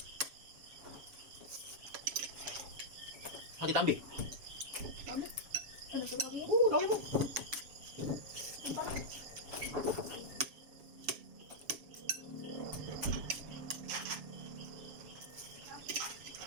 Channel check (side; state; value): left; late; 7.2 ms